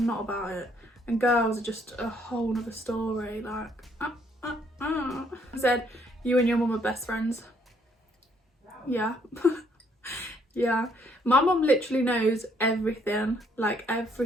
not about it. And girls are just a whole nother story. Like, I said you and your mum are best friends. Yeah. Yeah, my mum literally knows everything, like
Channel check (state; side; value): normal; both; correlation 0.68